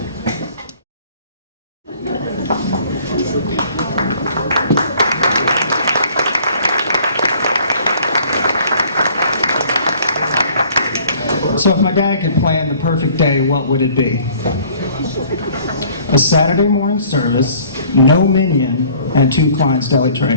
So if my dad could plan the perfect day, what would it be? A Saturday morning service, no minion, and 2 Klein's deli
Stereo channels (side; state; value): both; inverted; correlation -0.55